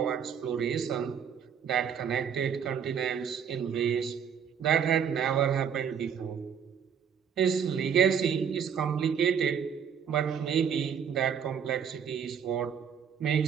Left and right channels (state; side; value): quieter; left; 7.6 dB